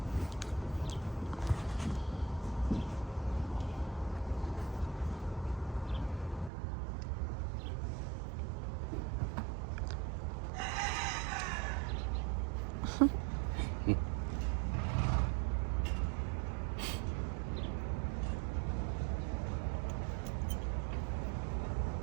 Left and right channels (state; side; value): drops out; left; at 6.5 s